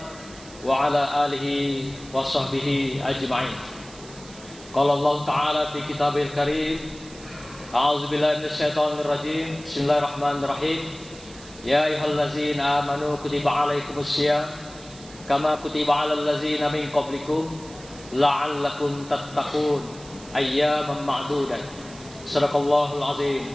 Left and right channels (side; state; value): right; noise; hiss, 19 dB below the sound